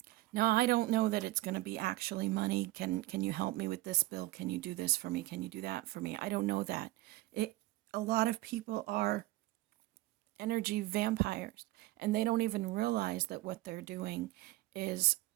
Now, I don't know that it's going to be actually money. Can you help me with this bill? Can you do this for me? Can you do that for me? I don't know that. A lot of people are energy vampires, and they don't even realize that what they're doing is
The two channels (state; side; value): quieter; left; 18.4 dB